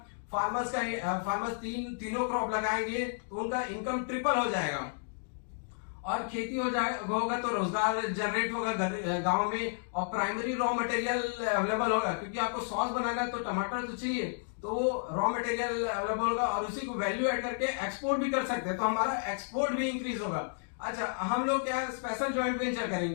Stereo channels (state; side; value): silent; right; digital silence